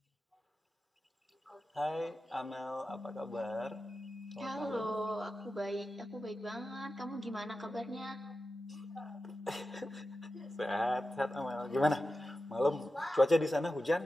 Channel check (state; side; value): normal; both; correlation 0.92